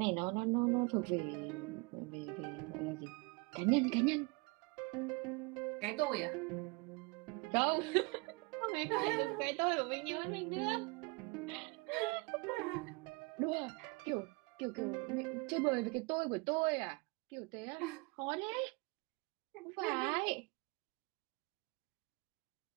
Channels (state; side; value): quieter; left; 28.4 dB